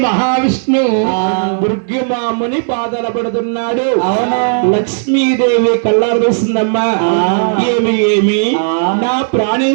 మహావిష్ణు దుర్గమాముని పాదాల పడుతున్నాడు. లక్ష్మీదేవి కళ్ళారు చూస్తుందమ్మా. ఏమి ఏమి నా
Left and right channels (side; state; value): left; silent; digital silence